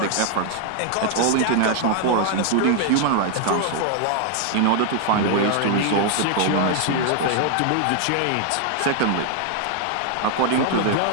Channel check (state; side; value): different; both; correlation 0.00